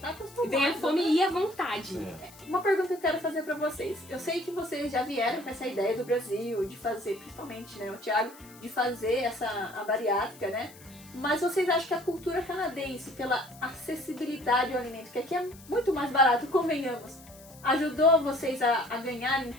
acostumado. Vem a fome e a vontade. Uma pergunta que eu quero fazer pra vocês. Eu sei que vocês já vieram com essa ideia do Brasil, de fazer, principalmente, né, o Thiago, de fazer a bariátrica, né? Mas vocês acham que a cultura canadense, pela acessibilidade ao alimento, que aqui é muito mais barato, convenhamos, ajudou vocês a ganharem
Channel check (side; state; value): left; noise; hiss, 22 dB below the sound